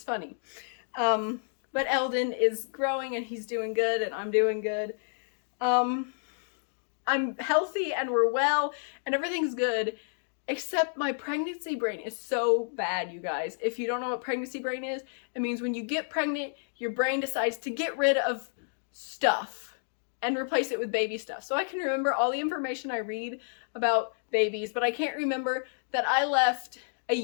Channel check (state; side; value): silent; right; digital silence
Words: funny. But Eldon is growing and he's doing good and I'm doing good. I'm healthy and we're well and everything's good, except my pregnancy brain is so bad, you guys. If you don't know what pregnancy brain is, it means when you get pregnant, your brain decides to get rid of stuff and replace it with baby stuff. So I can remember all the information I read about babies, but I can't remember that I left a